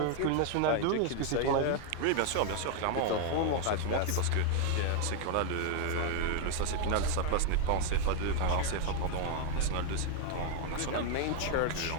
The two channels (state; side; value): different; both; correlation 0.00